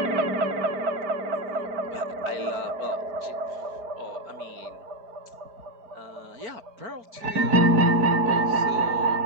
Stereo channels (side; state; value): left; late; 4.5 ms